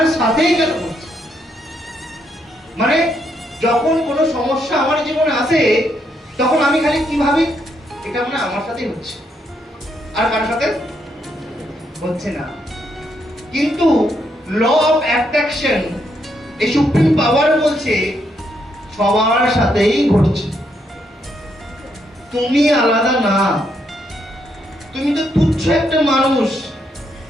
সাথেই কেন ঘটছে। মানে যখন কোনো সমস্যা আমার জীবনে আসে, তখন আমি খালি কি ভাবি? এটা মানে আমার সাথেই হচ্ছে, আর কারোর সাথে হচ্ছে না। কিন্তু ল অফ অ্যাট্রাকশন এই সুপ্রিম পাওয়ার বলছে সবার সাথেই ঘটছে, তুমি আলাদা না, তুমি তো তুচ্ছ একটা মানুষ।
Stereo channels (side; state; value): both; normal; correlation 0.77